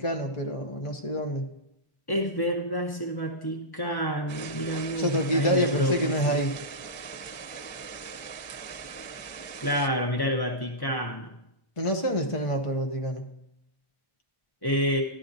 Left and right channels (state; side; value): late; right; 1.1 ms